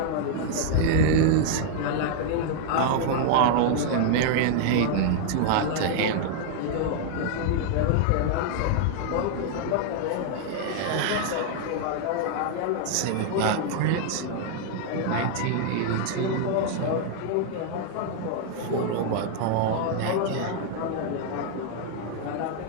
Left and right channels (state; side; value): different; both; correlation -0.01